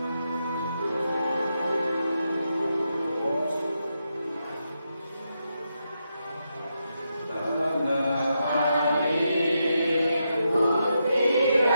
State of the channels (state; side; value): inverted; both; correlation -0.84